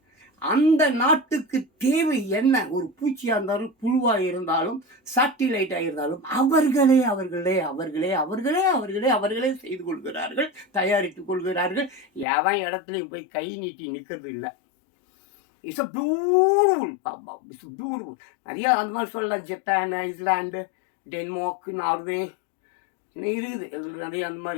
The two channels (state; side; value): drops out; right; at 12.2 s